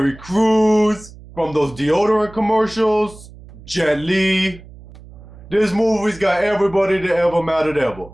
Crews, from those deodorant commercials, Jet Li. This movie's got everybody that ever mattered ever.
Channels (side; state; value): right; noise; hum, 19 dB below the sound